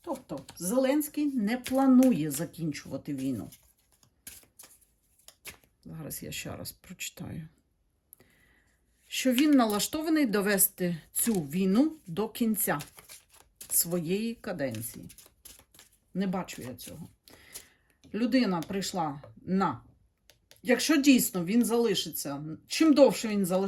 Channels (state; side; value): identical; both; correlation 1.00